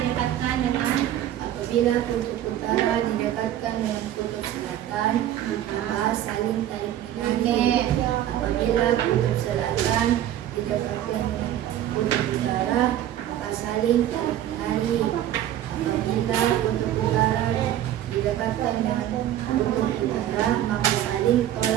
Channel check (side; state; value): left; quieter; 12.1 dB